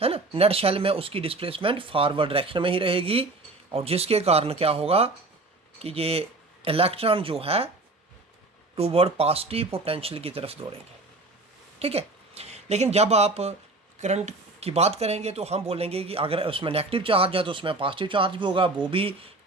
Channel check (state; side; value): quieter; left; 3.1 dB